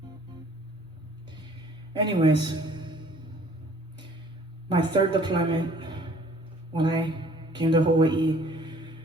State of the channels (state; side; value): normal; both; correlation 0.55